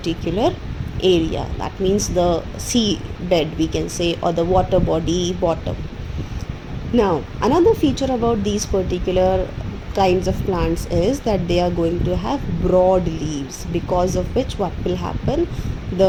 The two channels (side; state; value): both; identical; correlation 1.00